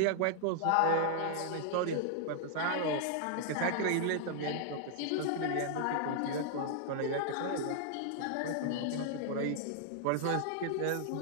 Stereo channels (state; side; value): different; both; correlation 0.00